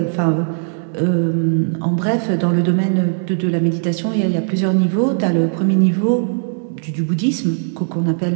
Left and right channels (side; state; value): left; silent; digital silence